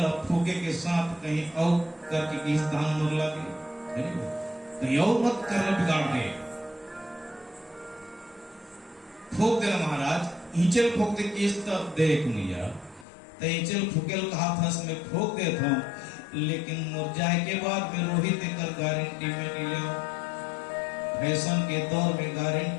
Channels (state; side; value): drops out; right; at 13.1 s